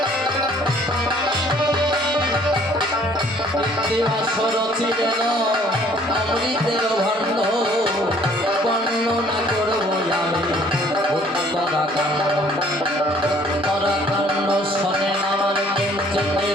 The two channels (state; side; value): normal; both; correlation 0.58